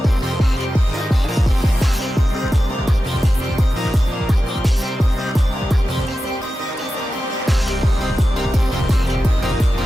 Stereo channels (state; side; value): normal; both; correlation 0.92